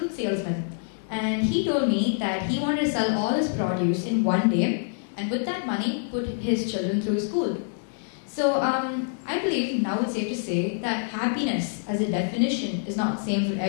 salesman, and he told me that he wanted to sell all his produce in one day, and with that money, put his children through school. So I believe now it's safe to say that happiness as a definition is not the same for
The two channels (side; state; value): right; silent; digital silence